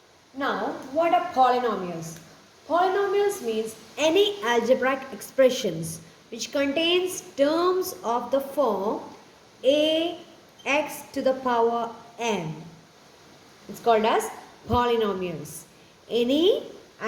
Now, what are polynomials? Polynomials means any algebraic expressions which contains terms of the form a x to the power n. It's called as polynomials. Any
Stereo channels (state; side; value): identical; both; correlation 1.00